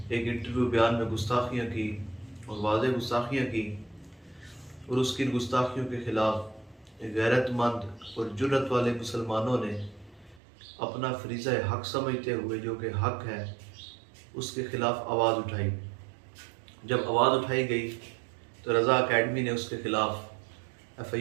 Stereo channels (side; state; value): left; drops out; at 10.4 s